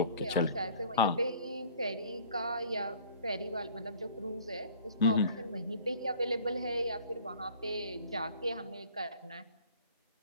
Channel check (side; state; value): both; inverted; correlation -0.50